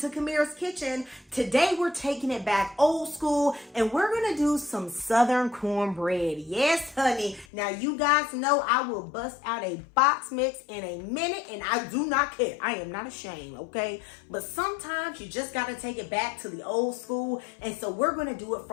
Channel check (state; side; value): drops out; right; at 7.5 s